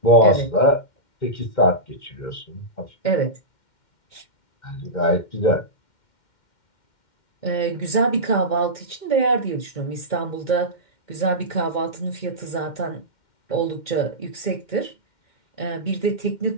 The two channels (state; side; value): late; right; 2.1 ms